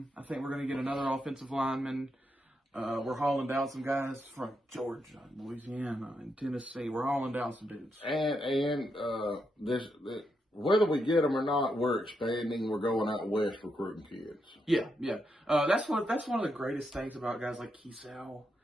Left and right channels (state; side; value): normal; both; correlation 0.82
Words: I think we're going to get another offensive lineman. We're hauling down some guys from Georgia, Louisiana, and Tennessee. We're hauling down some dudes. And whether we get them or not, we're expanding. We're going out west recruiting kids. Yeah. That's one of the greatest things about guys like Keesau